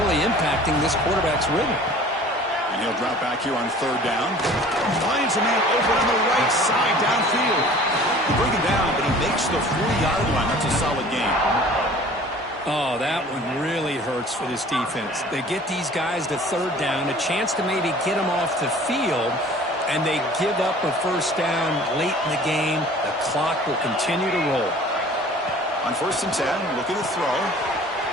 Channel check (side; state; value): both; normal; correlation 0.47